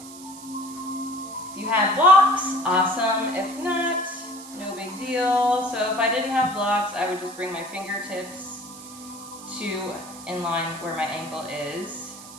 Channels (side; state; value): right; noise; hiss, 16 dB below the sound